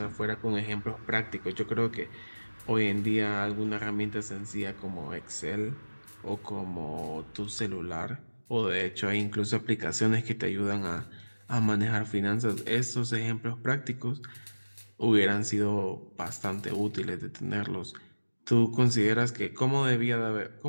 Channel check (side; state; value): both; inverted; correlation -1.00